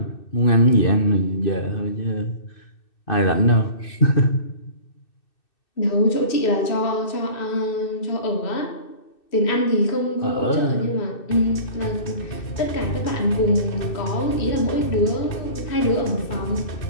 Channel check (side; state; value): right; late; 2.6 ms